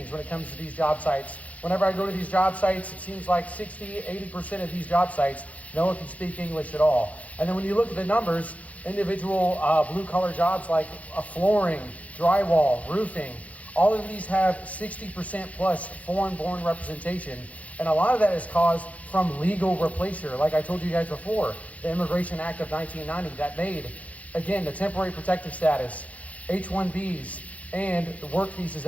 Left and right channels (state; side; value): late; right; 0.068 ms